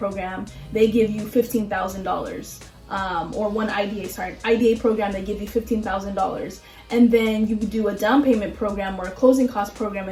they give you $15,000, or one IDA program, they give you $15,000. And then you do a down payment program or a closing cost program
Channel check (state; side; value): identical; both; correlation 1.00